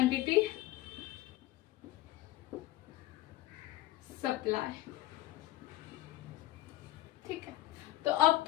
सप्लाई। ठीक है, तो अब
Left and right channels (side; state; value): right; quieter; 16.4 dB